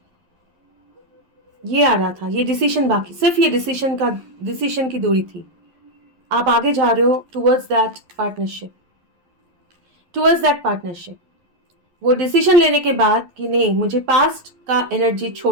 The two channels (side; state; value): left; late; 11 ms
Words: ये आ रहा था, ये डिसीजन बाकी, सिर्फ ये डिसीजन की दूरी थी। आप आगे जा रहे हो towards that partnership, towards that partnership. वो डिसीजन लेने के बाद कि नहीं, मुझे पास्ट का एनर्जी